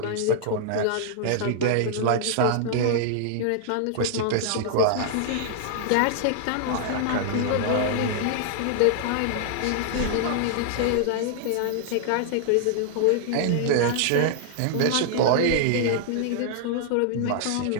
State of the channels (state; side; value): different; both; correlation -0.01